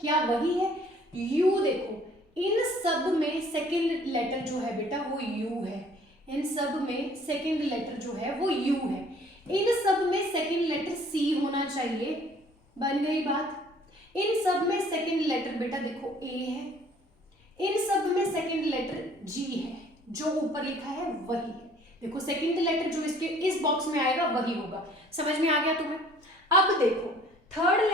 क्या वही है, यू। देखो इन सब में सेकंड लेटर जो है बेटा वो यू है, इन सब में सेकंड लेटर जो है वो यू है, इन सब में सेकंड लेटर सी होना चाहिए। बन गई बात। इन सब में सेकंड लेटर बेटा देखो ए है, इन सब में सेकंड लेटर जी है, जो ऊपर लिखा है वही है। देखो सेकंड लेटर जो इसके इस बॉक्स में आएगा वही होगा। समझ में आ गया तुम्हें? अब देखो थर्ड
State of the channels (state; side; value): normal; both; correlation 0.55